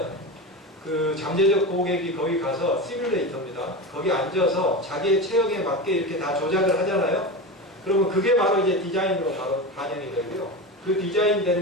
그 잠재적 고객이 거기 가서 시뮬레이터입니다. 거기 앉아서 자기의 체형에 맞게 이렇게 다 조작을 하잖아요. 그러면 그게 바로 이제 디자인으로 바로 반영이 되고요. 그 디자인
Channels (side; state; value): both; normal; correlation 0.23